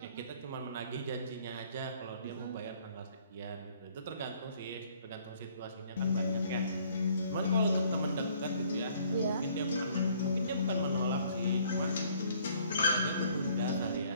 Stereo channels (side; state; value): both; inverted; correlation -0.60